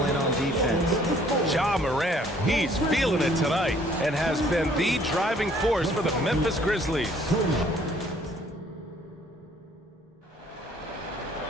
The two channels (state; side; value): normal; both; correlation 0.60